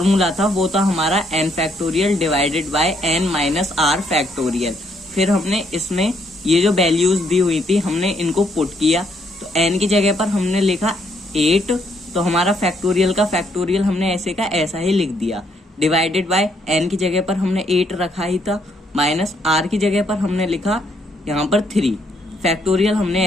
था वो था हमारा n factorial divided bye n minus r factorial. फिर हमने इसमें ये जो वैल्यूज दी हुई थी हमने इनको पुट किया, तो n की जगह पर हमने लिखा 8, तो हमारा फैक्टोरियल का फैक्टोरियल हमने ऐसे का ऐसा ही लिख दिया। डिवाइडेड बाय n की जगह पर हमने 8 रखा ही था, माइनस r की जगह पर हमने लिखा यहाँ पर 3 फैक्टोरियल हमने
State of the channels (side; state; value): both; normal; correlation 0.71